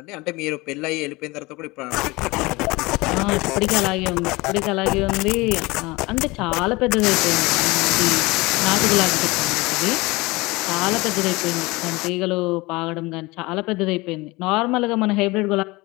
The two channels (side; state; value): right; quieter; 22.9 dB